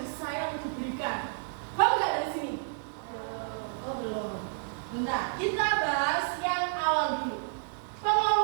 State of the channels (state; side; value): silent; left; digital silence